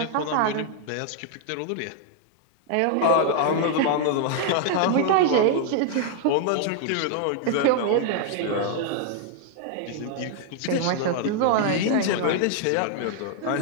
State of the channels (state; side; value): different; both; correlation -0.01